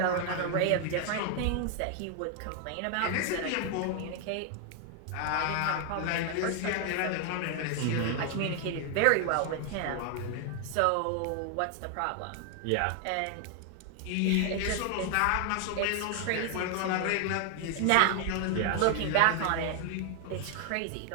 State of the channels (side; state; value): both; different; correlation 0.00